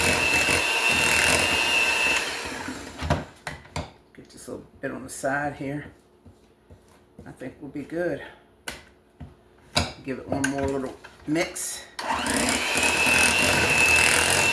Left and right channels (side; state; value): both; identical; correlation 1.00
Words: Get this little bit on the side here. I think we'll be good. Give it one more little mix.